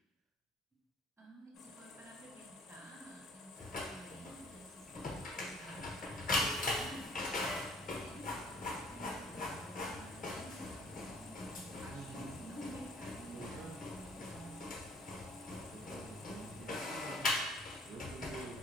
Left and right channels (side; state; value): both; normal; correlation 0.57